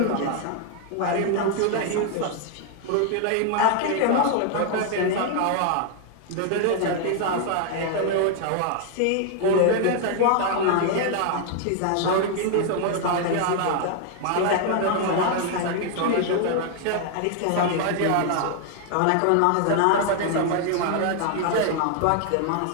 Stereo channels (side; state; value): both; different; correlation 0.00